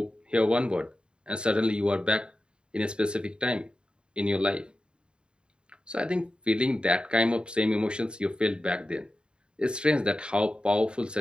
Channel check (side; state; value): left; late; 0.052 ms